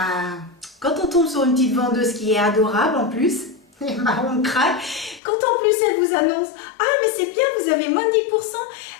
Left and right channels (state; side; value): drops out; right; at 5.2 s